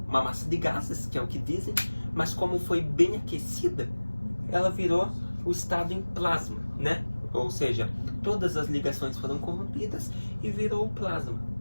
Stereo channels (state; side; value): inverted; both; correlation -1.00